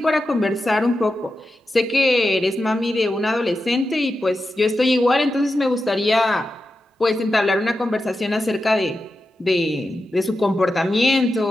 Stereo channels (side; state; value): both; normal; correlation 0.90